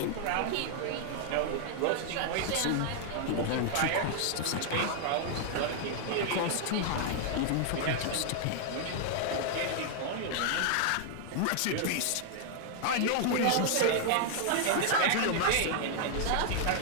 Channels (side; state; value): both; different; correlation 0.00